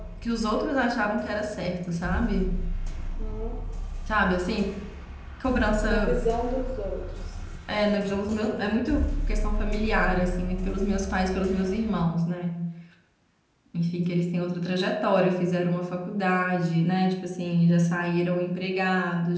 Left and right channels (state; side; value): identical; both; correlation 1.00